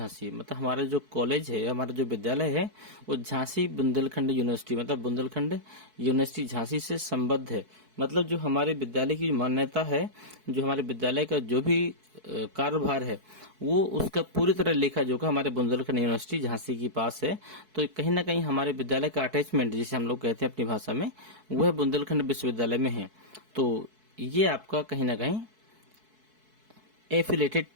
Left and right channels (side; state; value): left; late; 4.6 ms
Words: मतलब हमारा जो कॉलेज है, हमारा जो विद्यालय है वो झांसी बुंदेलखंड यूनिवर्सिटी, मतलब बुंदेलखंड यूनिवर्सिटी झांसी से संबद्ध है। मतलब जो हमारे विद्यालय की मान्यता है, जो हमारे विद्यालय का जो भी कार्यभार है वो उसका पूरी तरह लेखा जोखा हमारे बुंदेलखंड यूनिवर्सिटी झांसी के पास है। तो कहीं ना कहीं हमारे विद्यालय का अटैचमेंट जिसे हम लोग कहते हैं अपनी भाषा में, वह बुंदेलखंड विश्वविद्यालय में है। तो ये आपका कहीं ना कहीं एफिलेटेड